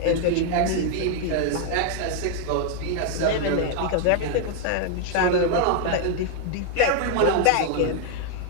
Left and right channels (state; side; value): different; both; correlation 0.00